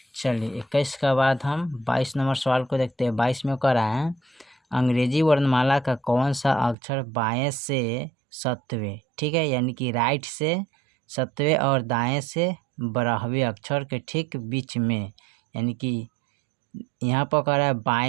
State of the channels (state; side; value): drops out; left; at 6.8 s